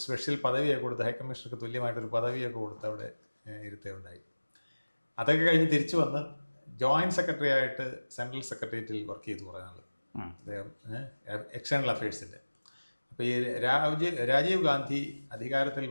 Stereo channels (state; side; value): inverted; both; correlation -1.00